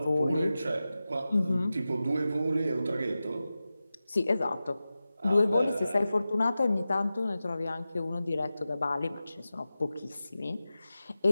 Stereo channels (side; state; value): both; inverted; correlation -0.94